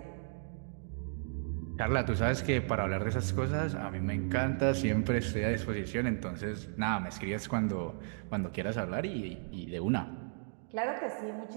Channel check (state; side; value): silent; left; digital silence